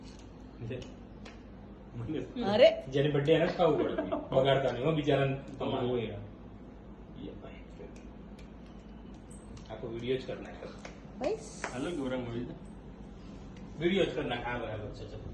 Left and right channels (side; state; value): both; identical; correlation 1.00